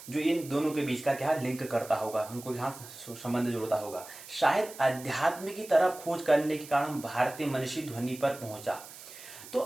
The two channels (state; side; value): noise; right; hiss, 16 dB below the sound